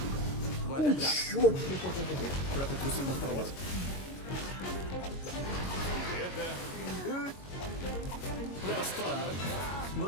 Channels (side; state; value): right; late; 22 ms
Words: ответ да. Чёрт. Прятать трусы под кровать. Это странно. Ну